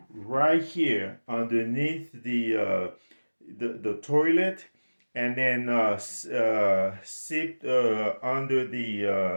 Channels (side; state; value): both; inverted; correlation -1.00